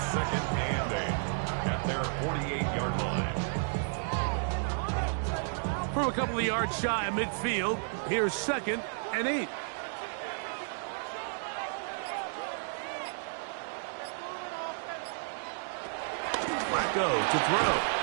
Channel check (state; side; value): silent; left; digital silence